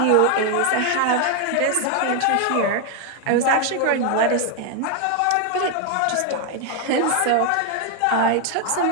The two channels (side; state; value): both; different; correlation 0.01